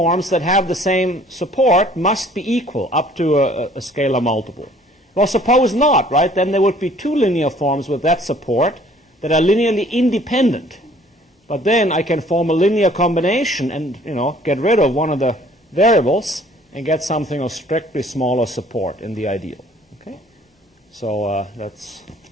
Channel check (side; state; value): both; normal; correlation 0.56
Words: that have the same support must be equal up to a scalar multiple. Well, suppose not, right? Then there would be two linear forms with that support that are linearly independent. But then I can form a linear combination and, get rid of one of the variables and get something of strictly smaller support in the ideal. Okay? So that's